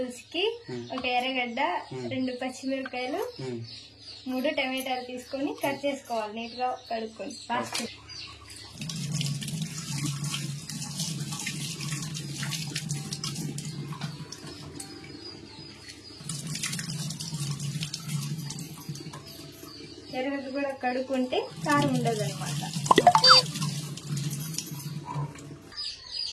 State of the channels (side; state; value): both; identical; correlation 1.00